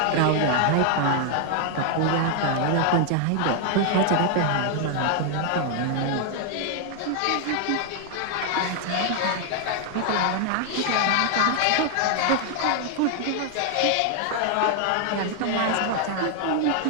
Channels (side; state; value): both; different; correlation 0.00